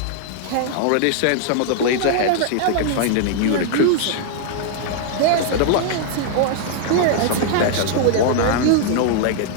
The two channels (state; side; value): different; both; correlation 0.00